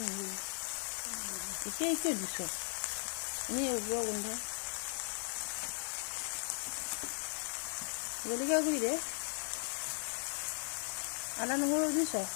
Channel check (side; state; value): right; silent; digital silence